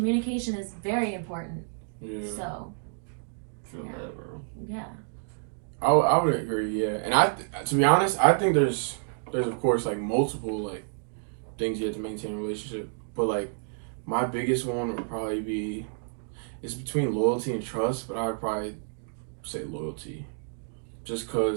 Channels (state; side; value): silent; left; digital silence